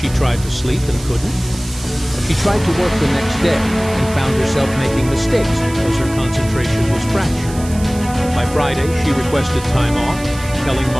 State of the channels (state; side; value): noise; right; hiss, 16 dB below the sound